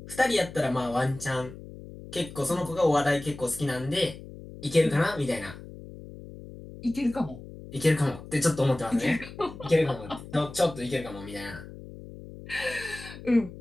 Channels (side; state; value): left; noise; hum, 15 dB below the sound